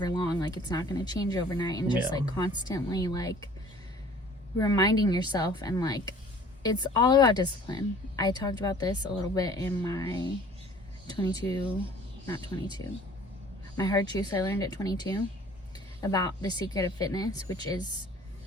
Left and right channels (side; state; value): both; normal; correlation 0.51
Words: long, like it's not gonna change overnight, and just like constantly like reminding yourself. And like it's all about discipline. I talked about this a little bit in my my hard truths I learned at 22 about the secret of fitness, which is